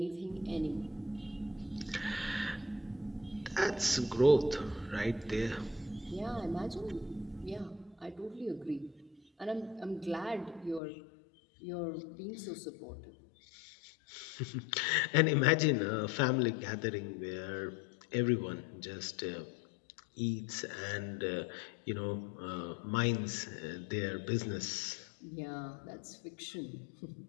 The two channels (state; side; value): drops out; right; at 10.8 s